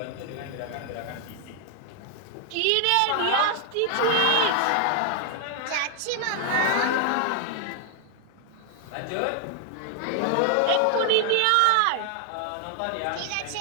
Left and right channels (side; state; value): both; different; correlation 0.00